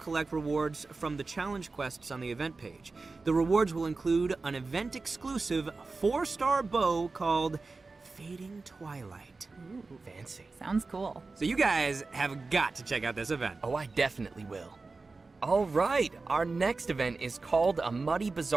rewards from the challenge quests on the event page. The rewards will include an event-exclusive 4-star bow called Fading Twilight. Ooh, fancy. Sounds cool. So you guys have got to check out this event. Oh, I definitely will. All right, our next event is called a Muddy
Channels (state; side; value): quieter; left; 3.8 dB